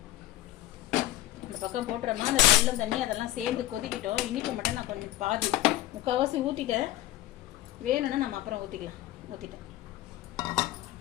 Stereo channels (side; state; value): right; quieter; 15.5 dB